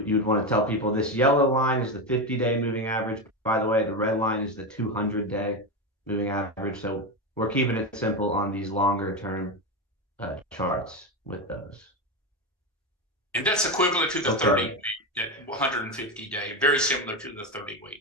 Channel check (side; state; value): both; normal; correlation 0.15